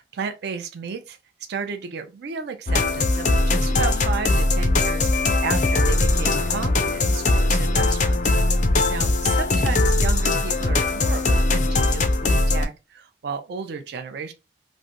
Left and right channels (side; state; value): both; normal; correlation 0.61